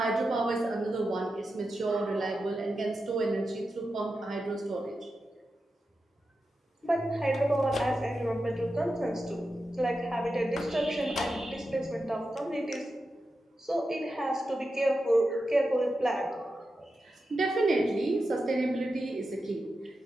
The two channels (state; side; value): normal; both; correlation 0.90